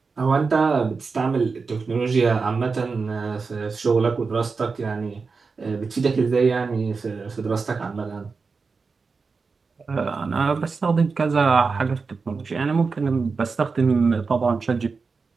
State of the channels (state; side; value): quieter; left; 4.7 dB